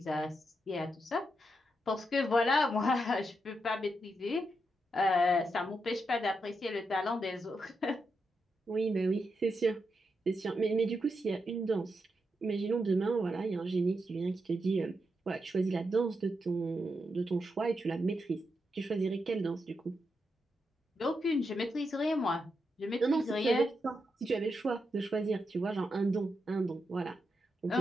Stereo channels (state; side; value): normal; both; correlation 0.84